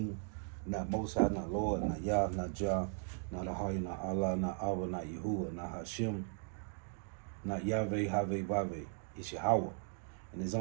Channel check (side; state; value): left; silent; 53 dB below the other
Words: not Most High, not Lord, not Yah, not Jah, not Ahaya, not Allah, not Abba, not Yahuwah, not Hashem, not Yahweh, Haveh, Vaveh. It's Yahweh. And his